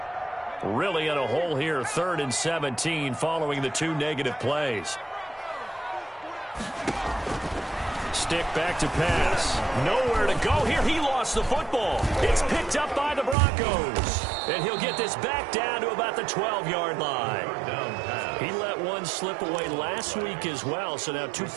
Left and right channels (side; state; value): left; drops out; at 13.4 s